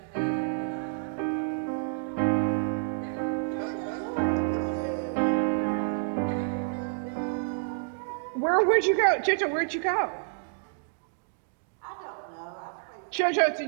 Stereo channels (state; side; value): silent; left; digital silence